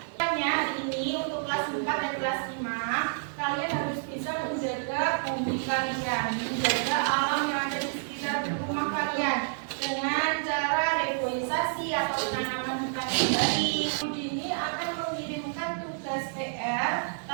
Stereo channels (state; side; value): silent; left; digital silence